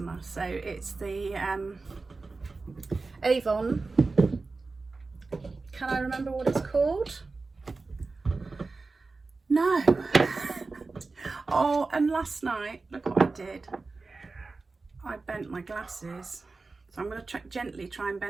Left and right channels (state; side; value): quieter; left; 3.8 dB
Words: so it's the Avon. Can I remember what it's called? No. Oh, and last night, look what I did. I bent my glasses, so I'm going to gently try and